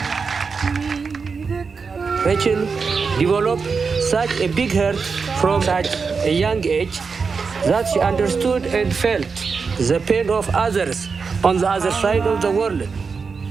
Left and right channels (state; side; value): quieter; left; 5.1 dB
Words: Rachel developed such a big heart from such a young age that she understood and felt the pain of others on the other side of the world.